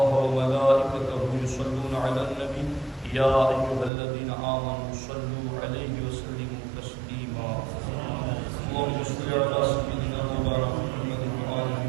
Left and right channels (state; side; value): drops out; left; at 3.9 s